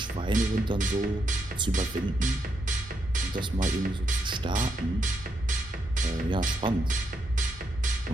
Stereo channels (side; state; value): both; normal; correlation 0.80